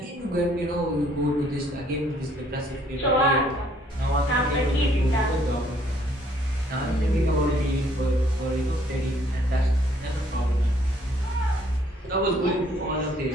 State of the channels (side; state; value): both; normal; correlation 0.64